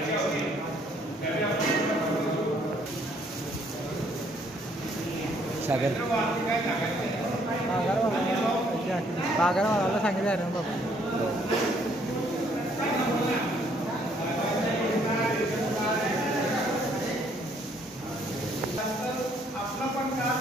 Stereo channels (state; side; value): normal; both; correlation 0.65